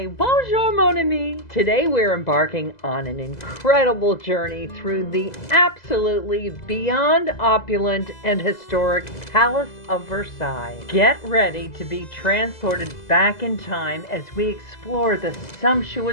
bonjour mon ami. Today we're embarking on an incredible journey through the absolutely beyond opulent and historic Palace of Versailles. Get ready to be transported back in time as we explore the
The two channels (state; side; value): late; right; 2.0 ms